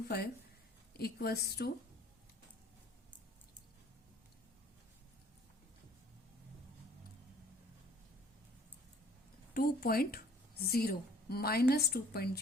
equals to minus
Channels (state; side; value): normal; both; correlation 0.55